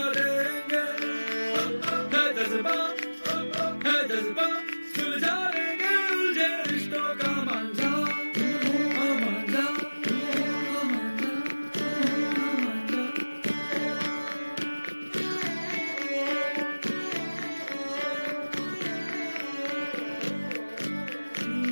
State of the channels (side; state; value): both; inverted; correlation -1.00